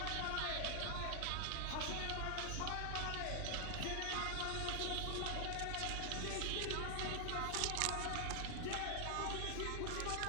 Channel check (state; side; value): different; both; correlation 0.00